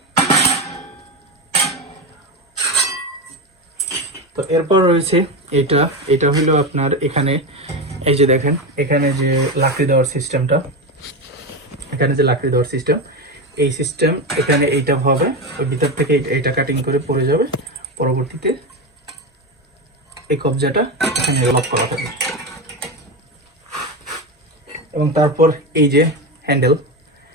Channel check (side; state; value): both; normal; correlation 0.17